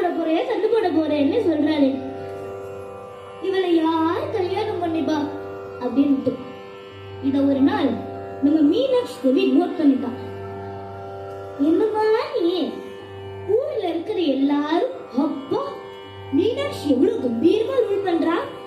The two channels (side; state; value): both; identical; correlation 1.00